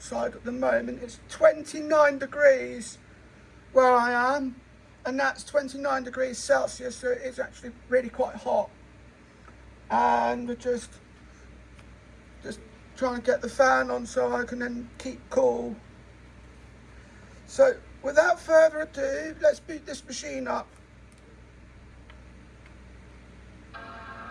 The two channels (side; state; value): both; identical; correlation 1.00